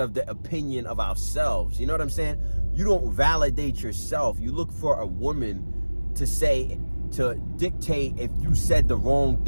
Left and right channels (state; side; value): inverted; both; correlation -1.00